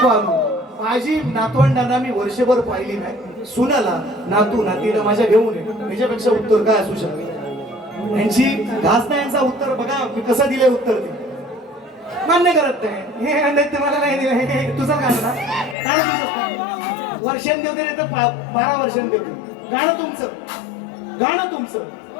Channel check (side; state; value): right; drops out; at 15.8 s